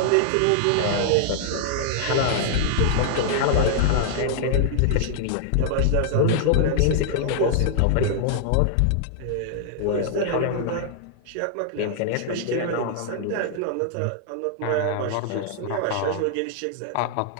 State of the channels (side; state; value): both; different; correlation -0.01